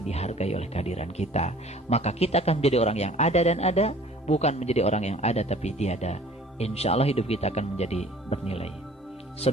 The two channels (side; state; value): both; normal; correlation 0.50